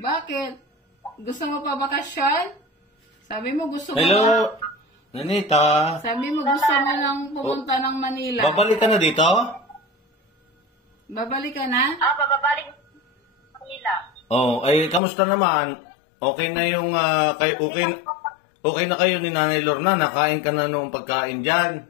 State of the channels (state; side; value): drops out; right; at 15.0 s